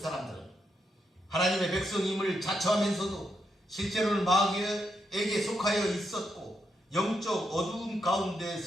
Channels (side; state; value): both; normal; correlation 0.81